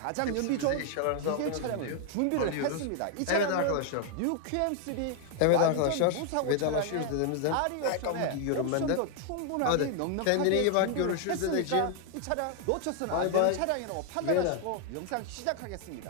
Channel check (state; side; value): different; both; correlation 0.00